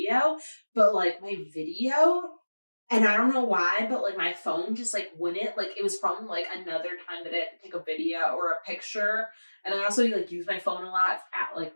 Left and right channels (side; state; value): both; inverted; correlation -1.00